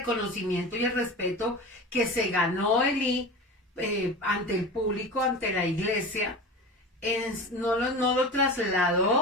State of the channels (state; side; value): normal; both; correlation 0.31